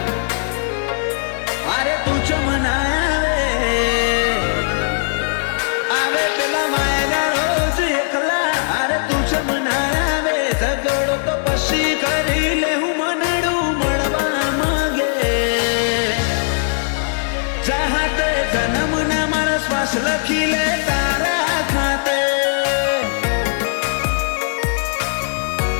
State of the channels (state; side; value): silent; right; digital silence